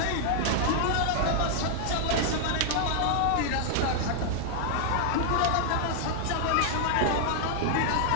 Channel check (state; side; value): different; both; correlation -0.01